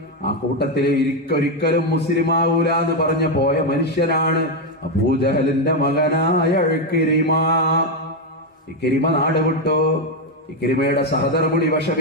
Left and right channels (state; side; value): normal; both; correlation 0.05